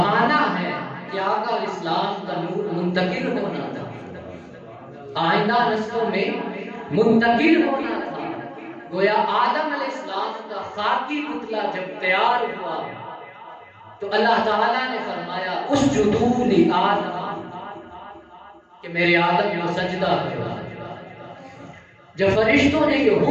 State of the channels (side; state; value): both; identical; correlation 1.00